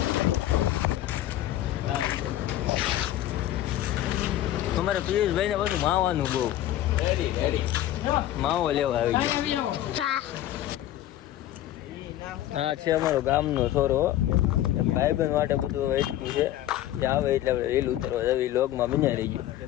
તમારે પિયુષભાઈ ને બધું માવાનું બહુ માવો લેવા આવી ગયો. હા છે અમારો ગામનો છોરો. ભાઈબંધ માટે બધું વેચતું છે. જે આવે એટલે આપણે રીલ ઉતરવા જવી. લોગમાં બન્યા રહી ગયું.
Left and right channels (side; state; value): right; quieter; 13.3 dB